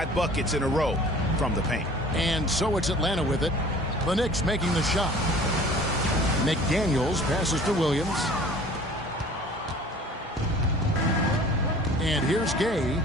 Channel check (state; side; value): normal; both; correlation 0.47